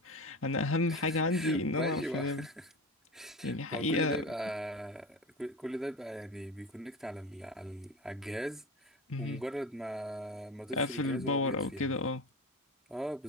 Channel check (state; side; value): normal; both; correlation 0.27